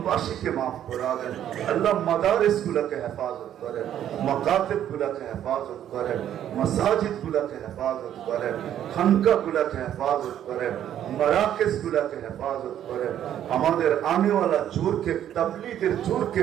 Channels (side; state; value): left; quieter; 10.7 dB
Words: মাফ করে দেন। আল্লাহ মাদারিস গুলাকে হেফাজত করেন, মাকাতিব গুলাকে হেফাজত করেন, মাসাজিদ গুলাকে হেফাজত করেন, খানকা গুলাকে হেফাজত করেন, মারাকিজ গুলাকে হেফাজত করেন। আমাদের আনেওয়ালা জোরকে, তাবলীগের জোরকে